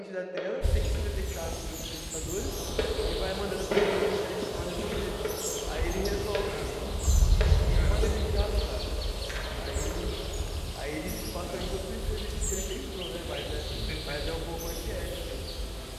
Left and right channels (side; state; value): both; identical; correlation 1.00